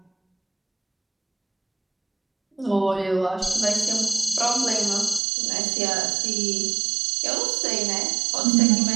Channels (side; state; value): left; drops out; at 5.2 s